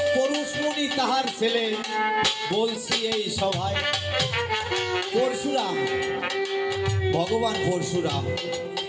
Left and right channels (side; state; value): both; identical; correlation 1.00